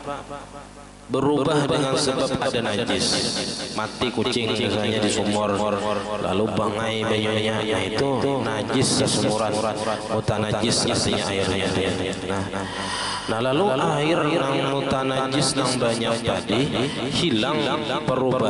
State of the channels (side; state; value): both; identical; correlation 1.00